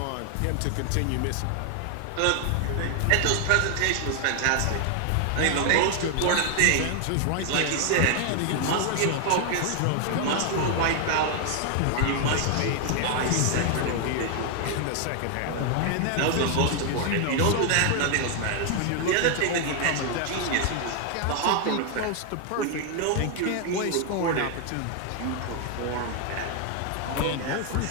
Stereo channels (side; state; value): both; different; correlation 0.00